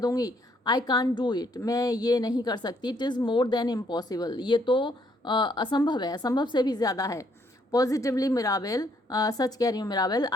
आई कान डू इट मैं ये नहीं कर सकती। It is more than impossible ये तो असंभव है, असंभव से भी ज़्यादा है। पॉजिटिवली मिराबेल, सच कह रही हूँ Mirabell,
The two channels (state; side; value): normal; both; correlation 0.69